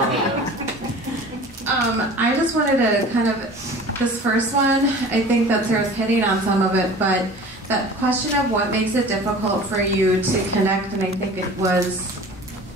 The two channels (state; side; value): normal; both; correlation 0.42